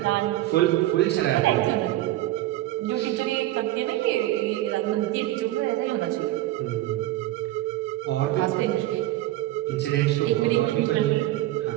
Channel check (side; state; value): left; quieter; 15.7 dB